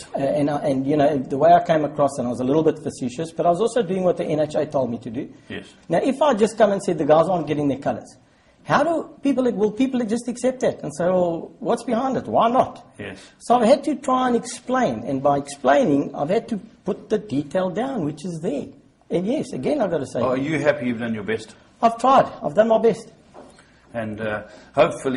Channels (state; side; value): identical; both; correlation 1.00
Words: And you know, the way I came across, and I was a little bit facetious, but I was also doing what the NHA told me to do. Yes. Now, if I just come and said the guys aren't getting their colours, will people just accept that and say, well, what's behind it? Why not? Yes. So I've had to try and explain, and by explaining, I've had to put the detail down, which is there. And yes, again, I've got to say... Are you happy you've done your best? I've tried. I've done my best. And